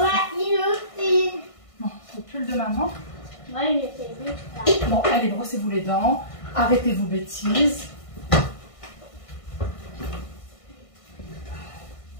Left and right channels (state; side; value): late; right; 1.5 ms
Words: Ouais, frère. il aussi. Bon, le pull de maman. Moi, il était vite là. Bon, allez, brossez-vous les dents. Arrêtez vos bêtises.